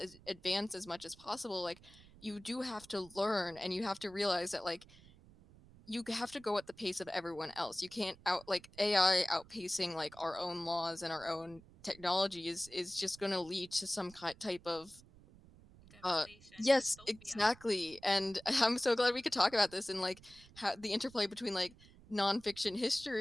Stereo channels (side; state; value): right; noise; rumble, 23 dB below the sound